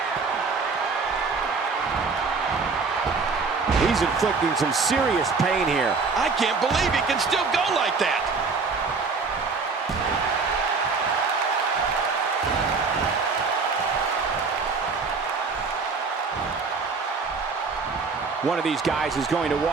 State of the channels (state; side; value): quieter; left; 4.6 dB